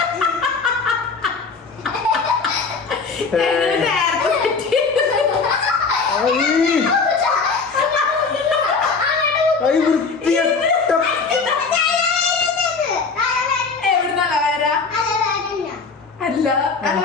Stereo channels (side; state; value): right; quieter; 4.7 dB